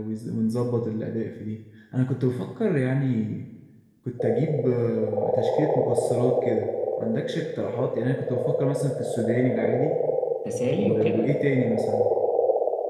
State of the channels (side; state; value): both; identical; correlation 1.00